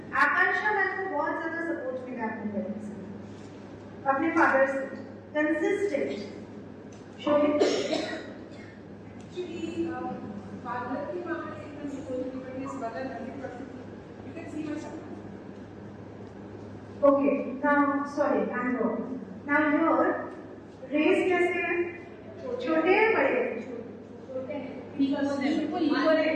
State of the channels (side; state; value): both; identical; correlation 1.00